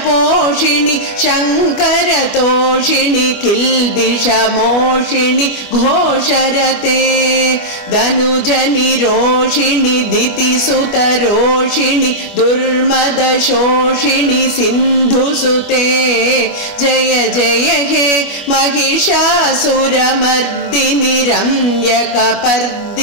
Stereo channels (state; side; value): late; right; 25 ms